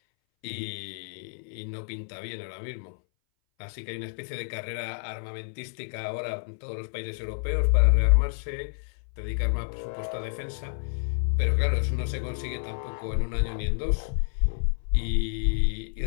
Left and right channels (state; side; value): silent; right; 59 dB below the other